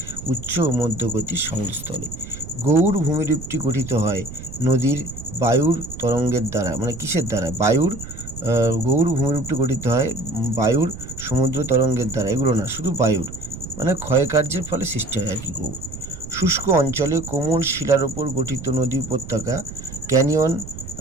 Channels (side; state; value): right; noise; rumble, 12 dB below the sound